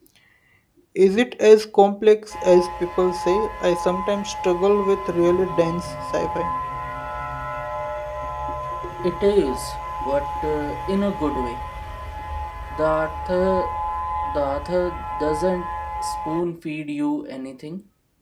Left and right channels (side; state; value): both; identical; correlation 1.00